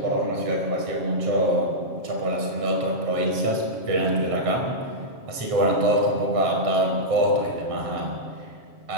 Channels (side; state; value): left; late; 7.5 ms